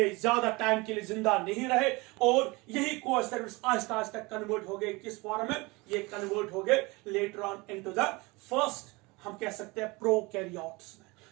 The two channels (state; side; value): quieter; left; 24.7 dB